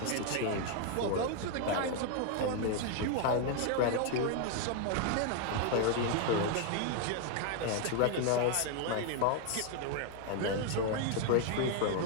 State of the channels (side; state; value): both; different; correlation 0.01